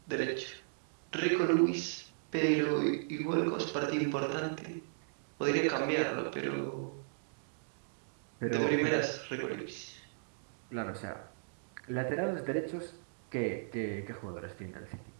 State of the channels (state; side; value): silent; left; digital silence